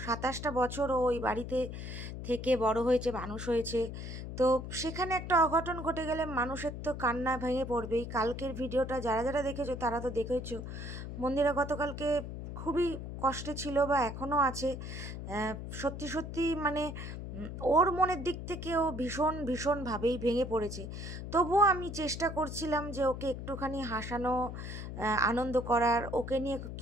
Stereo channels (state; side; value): noise; left; hum, 8 dB below the sound